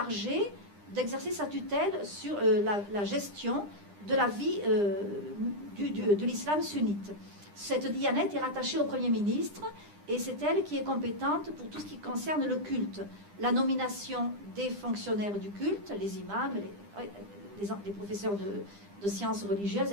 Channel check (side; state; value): left; late; 9.9 ms